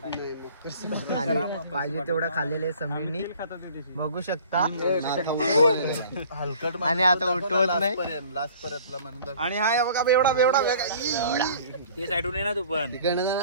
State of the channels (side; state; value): both; inverted; correlation -0.50